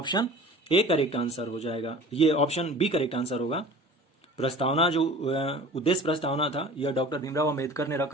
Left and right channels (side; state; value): both; normal; correlation 0.42